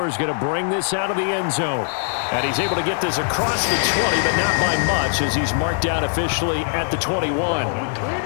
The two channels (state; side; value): silent; right; 64 dB below the other